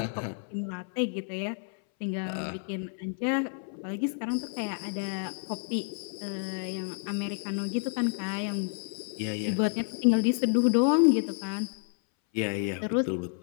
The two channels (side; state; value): right; silent; 58 dB below the other